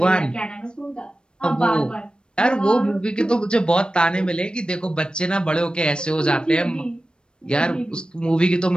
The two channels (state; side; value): late; right; 0.053 ms